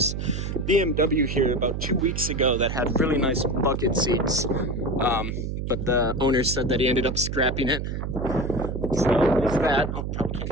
BMW here about 2 weeks ago that had really nice bucket seats, but the owner said that he ended up scrapping it. So there's that. Oh, probably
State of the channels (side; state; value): right; noise; hum, 4 dB below the sound